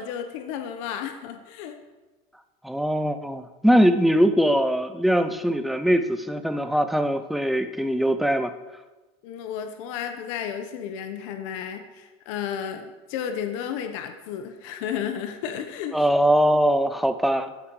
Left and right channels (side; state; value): both; normal; correlation 0.84